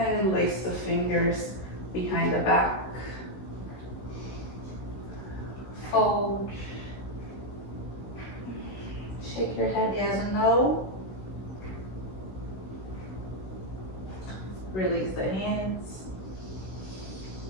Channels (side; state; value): right; late; 16 ms